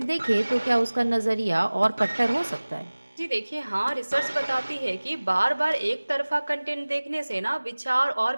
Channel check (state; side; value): inverted; both; correlation -1.00